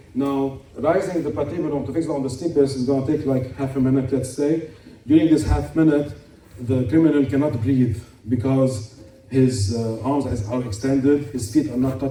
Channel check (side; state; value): both; identical; correlation 1.00